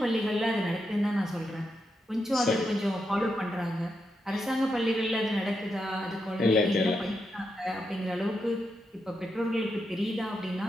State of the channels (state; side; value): normal; both; correlation 0.84